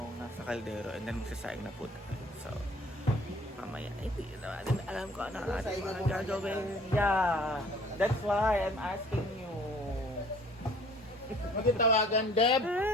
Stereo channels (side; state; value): both; normal; correlation 0.54